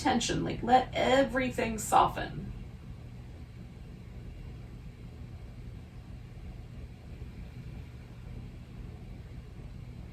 Like let everything soften.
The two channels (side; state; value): both; identical; correlation 1.00